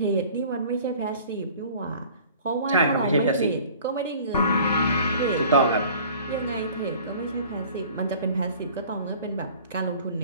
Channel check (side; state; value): both; inverted; correlation -0.47